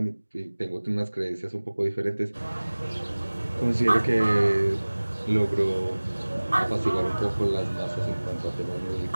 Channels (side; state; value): both; inverted; correlation -1.00